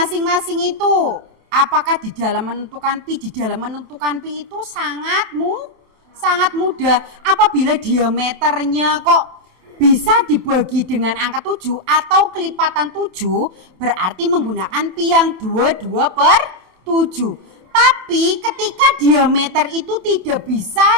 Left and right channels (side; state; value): left; late; 27 ms